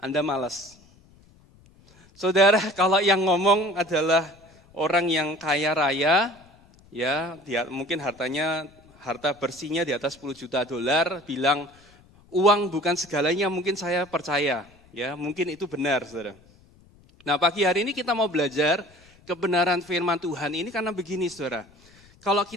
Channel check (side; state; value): left; noise; rumble, 28 dB below the sound